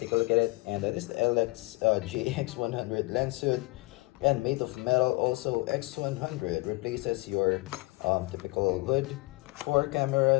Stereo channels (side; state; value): right; quieter; 24.1 dB